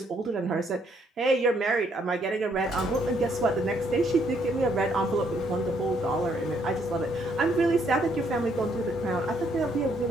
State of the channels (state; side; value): normal; both; correlation 0.70